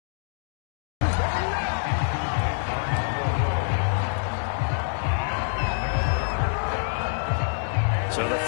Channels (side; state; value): right; silent; digital silence